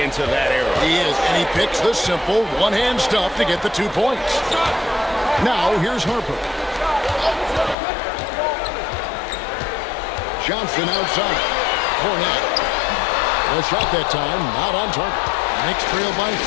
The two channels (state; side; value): drops out; right; at 7.8 s